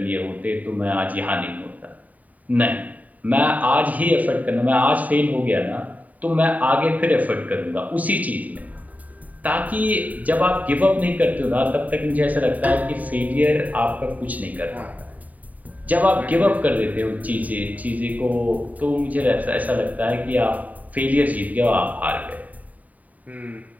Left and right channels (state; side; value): late; left; 0.074 ms